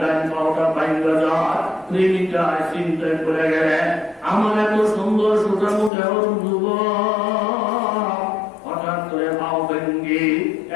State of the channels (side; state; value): right; drops out; at 5.9 s